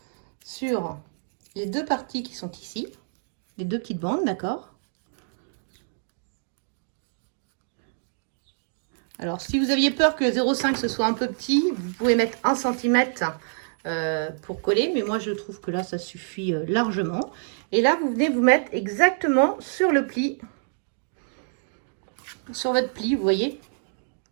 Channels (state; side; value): silent; left; digital silence